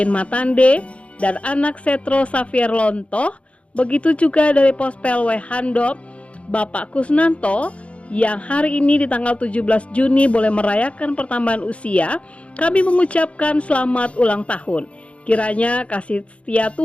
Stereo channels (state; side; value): late; right; 0.062 ms